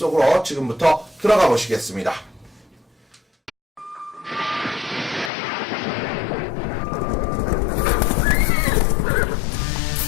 지금부터 들어가 보시겠습니다.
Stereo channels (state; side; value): drops out; right; at 5.3 s